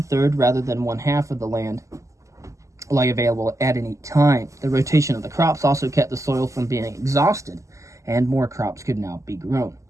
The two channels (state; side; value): late; left; 0.15 ms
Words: rather than 1/2 of the land lay available at any time. The rotation of the crops also kept the soil from being exhausted, and more crops could now be grown.